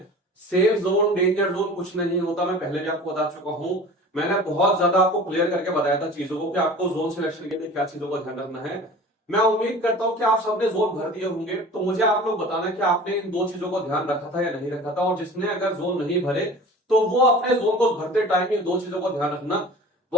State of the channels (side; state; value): both; normal; correlation 0.41